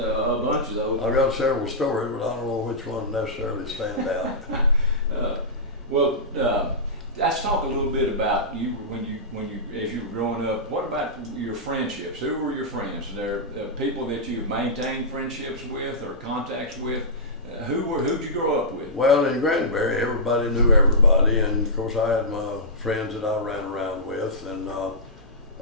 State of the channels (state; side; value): normal; both; correlation -0.14